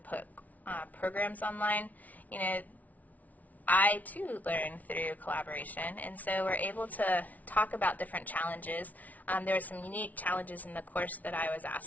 programs online, I too learn through collaboration, and so we're able to talk about different challenges. There were some unique challenges in the course that I was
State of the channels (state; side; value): late; right; 0.074 ms